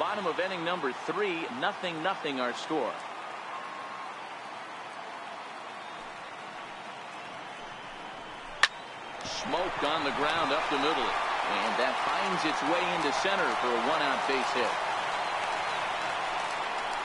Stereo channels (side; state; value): both; identical; correlation 1.00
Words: of inning number 3, 0-0 our score. Smoked on the ground up the middle. And that finds its way into center for a 1-out base hit.